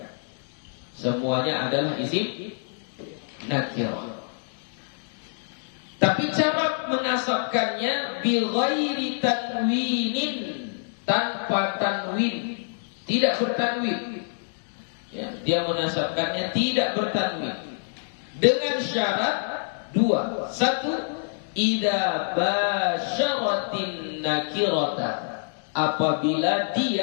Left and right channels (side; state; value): right; silent; digital silence